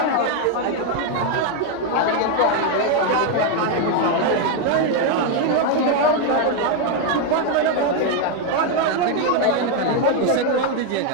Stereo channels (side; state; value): both; different; correlation 0.01